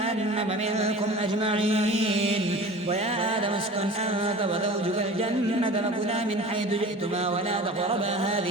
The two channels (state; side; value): normal; both; correlation 0.38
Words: منكم أجمعين ويا آدم اسكن أنت وزوجك الجنة فكلا من حيث جئتما ولا تقربا